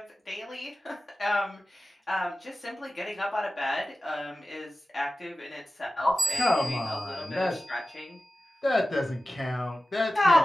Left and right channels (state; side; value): normal; both; correlation 0.95